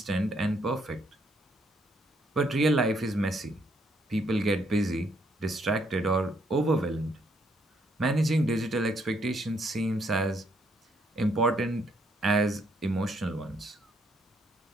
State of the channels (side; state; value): both; normal; correlation 0.72